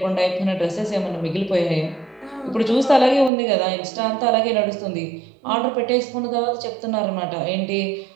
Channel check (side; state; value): left; drops out; at 3.3 s